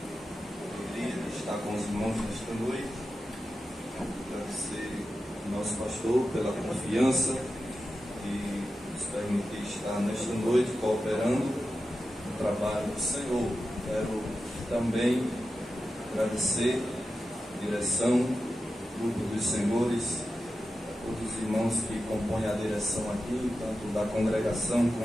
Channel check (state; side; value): normal; both; correlation 0.91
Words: alegria de estar com os irmãos nesta noite, agradecer ao nosso pastor pela confiança e nos permitir estar nesta noite cooperando no trabalho do Senhor. Quero também agradecer a direção, grupo dos senhores, todos os irmãos que compõem a direção aqui, tanto da congregação